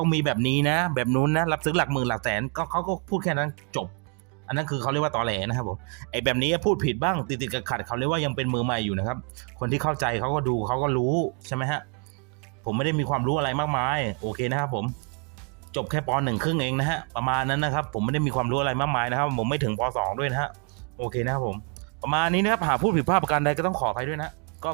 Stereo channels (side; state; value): left; quieter; 37.2 dB